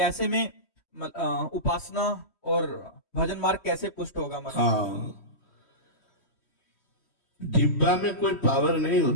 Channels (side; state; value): right; late; 3.1 ms